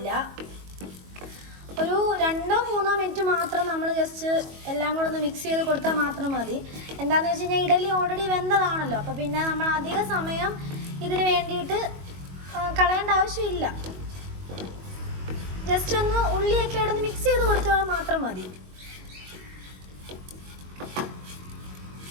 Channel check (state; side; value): late; left; 22 ms